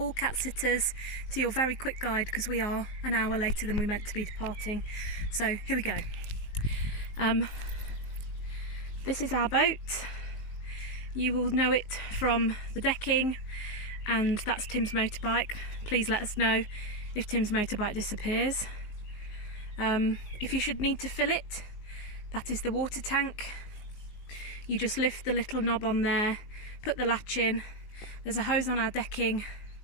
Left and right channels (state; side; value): late; right; 19 ms